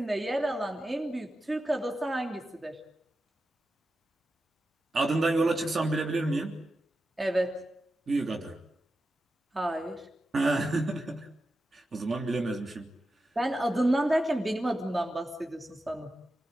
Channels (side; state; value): both; normal; correlation 0.91